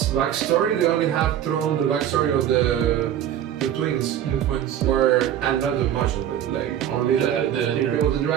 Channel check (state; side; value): quieter; left; 10.5 dB